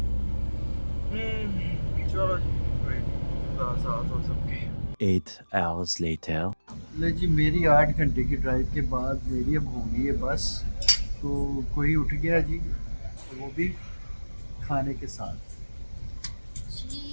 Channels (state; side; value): inverted; both; correlation -1.00